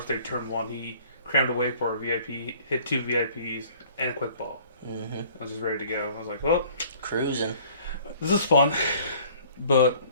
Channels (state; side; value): inverted; both; correlation -0.53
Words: day turn 1. He crammed away for a VIP, hit 2 VIPs, and a quick ball. Mm-hmm. I was just ready to go. I was like, well, cruising. This is fun, but